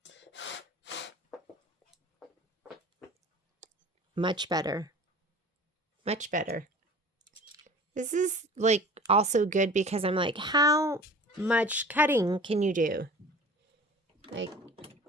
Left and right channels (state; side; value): normal; both; correlation 0.43